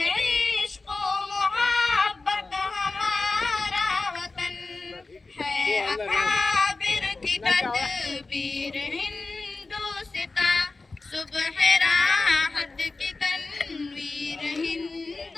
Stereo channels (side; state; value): right; quieter; 3.6 dB